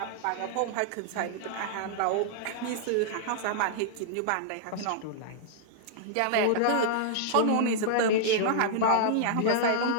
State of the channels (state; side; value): different; both; correlation -0.01